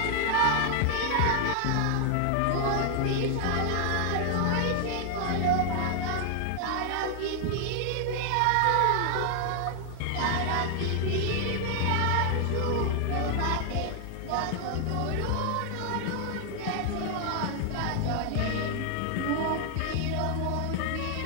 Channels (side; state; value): both; different; correlation 0.00